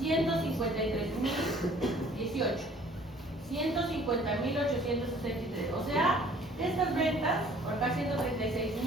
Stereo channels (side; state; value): both; normal; correlation 0.54